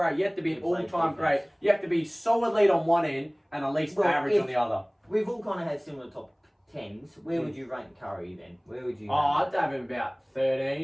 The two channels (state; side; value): identical; both; correlation 1.00